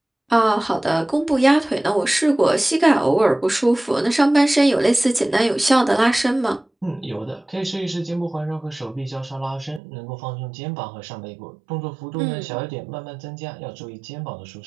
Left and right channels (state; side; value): drops out; left; at 9.8 s